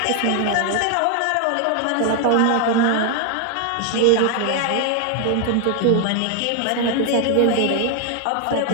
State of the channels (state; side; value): different; both; correlation 0.00